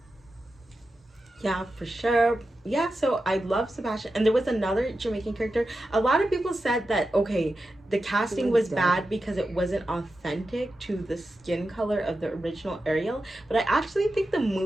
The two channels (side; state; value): both; normal; correlation 0.91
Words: Yeah, for sure. Yeah, so I love Sebastian. And there was another Jamaican character. A lot of people said that, okay, the casting was bad because it wasn't authentic to the skin color of the original Ariel. But I actually think the